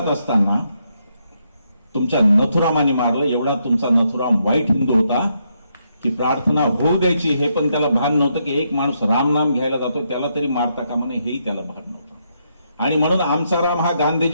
असताना तुमच्या नथुरामाने मारलं. एवढा तुमचा नथुराम वाईट हिंदू होता की प्रार्थना होऊ द्यायची हे पण त्याला भान नव्हतं, की एक माणूस राम नाम घ्यायला जातो त्याला तरी मारता कामा नये, हेही त्याला भान नव्हतं. आणि म्हणून आमचा राम हा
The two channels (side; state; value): both; inverted; correlation -0.78